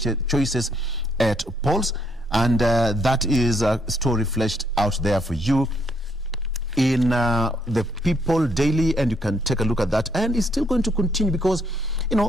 at polls, and that is a story fleshed out there for you in the People Daily, and you can take a look at that. And it's still going to continue because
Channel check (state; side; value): normal; both; correlation 0.71